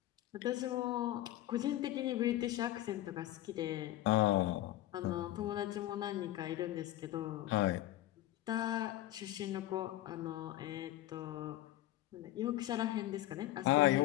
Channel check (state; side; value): quieter; right; 14.9 dB